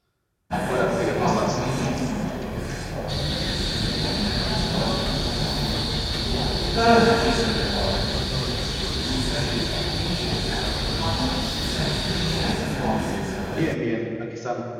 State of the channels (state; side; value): identical; both; correlation 1.00